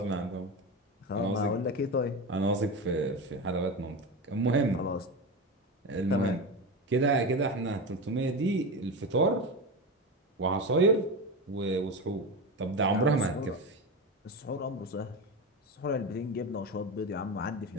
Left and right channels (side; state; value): both; normal; correlation 0.21